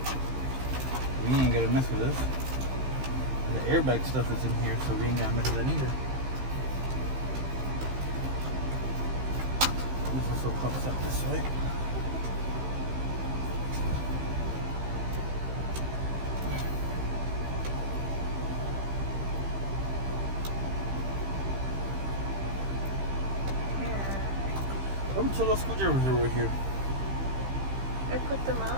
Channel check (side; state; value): left; late; 15 ms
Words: We ain't gotta mess with this. And the airbag stuff is in here, so we ain't gotta mess with that either. This also pops up this way. How many little screwdrivers are over here? I put them